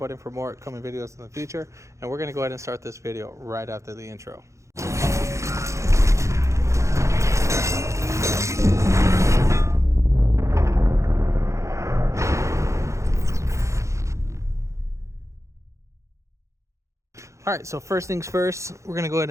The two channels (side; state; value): left; late; 0.14 ms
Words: for more upcoming videos in the future. And we're going to go ahead and start this video right after the intro. All right, so first things first, we're gonna go ahead